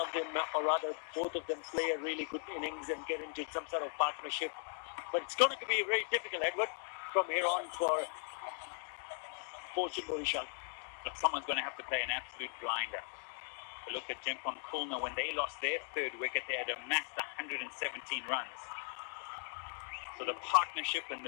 of them, or rather both of them, play a really good innings and get into some sort of partnership. But it's going to be very difficult, Edward, from here on for Barishal. Look, someone's going to have to play an absolute blinder. Look at Dhaka Khulna. When they lost their 3rd wicket, they had amassed 117 runs. So the partnership and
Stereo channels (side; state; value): right; silent; 52 dB below the other